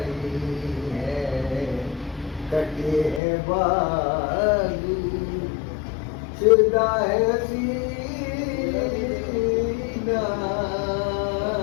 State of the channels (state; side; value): drops out; right; at 3.2 s